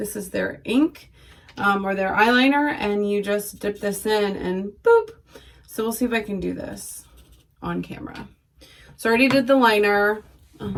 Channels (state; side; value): identical; both; correlation 1.00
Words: is their ink. Or their eyeliner, and you just dip this in and boop. So we'll see if I can do this on camera. So I already did the liner.